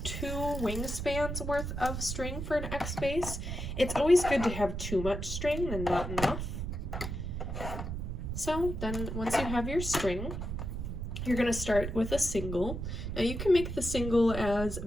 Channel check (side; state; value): right; noise; rumble, 4 dB below the sound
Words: 2 wingspans worth of string for an X base. It's always good to have too much string than not enough. So then once you have your string, you're going to start with a single. Now you can make the single as